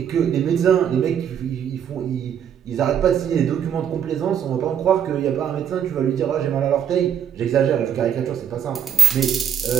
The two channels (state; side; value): quieter; left; 8.4 dB